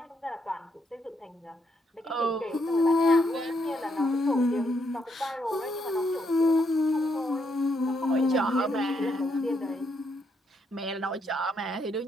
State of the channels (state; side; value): normal; both; correlation 0.76